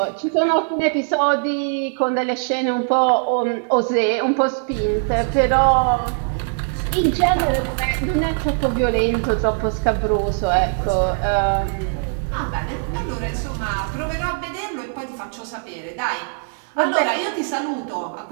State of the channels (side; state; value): left; silent; 57 dB below the other